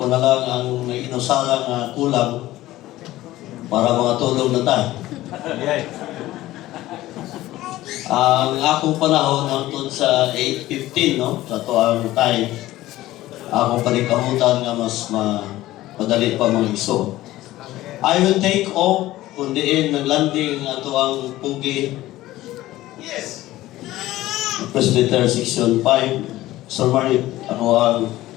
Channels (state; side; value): quieter; right; 16.1 dB